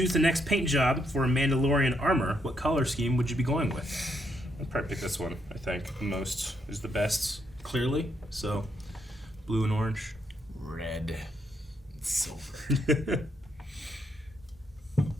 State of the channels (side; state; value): both; normal; correlation 0.76